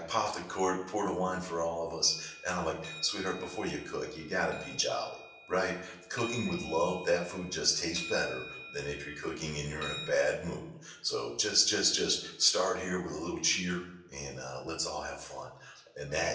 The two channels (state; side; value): identical; both; correlation 1.00